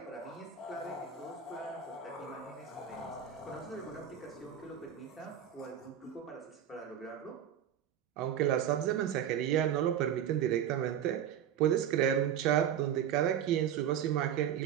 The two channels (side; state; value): left; quieter; 9.4 dB